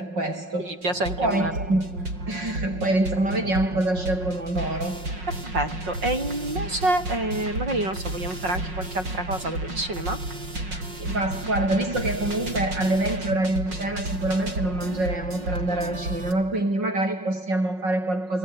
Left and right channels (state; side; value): late; left; 5.5 ms